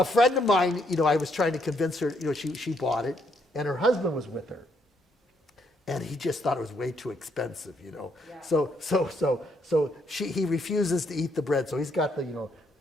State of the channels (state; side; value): normal; both; correlation 0.73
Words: friend of mine, I was trying to convince her. She bought it, and her husband was with her, and he just thought it was way too expensive. Yeah. So he refuses to eat the bread. So he's got the